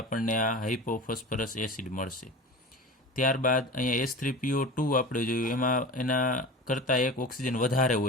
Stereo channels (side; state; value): both; normal; correlation 0.33